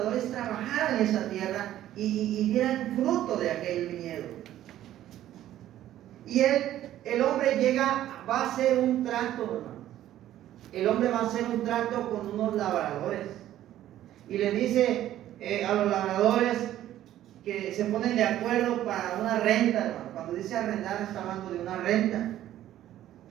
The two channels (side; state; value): left; quieter; 12.8 dB